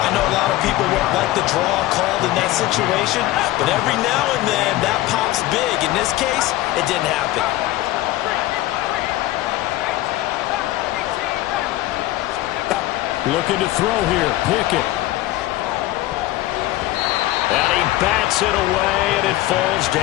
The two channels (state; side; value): quieter; right; 16.2 dB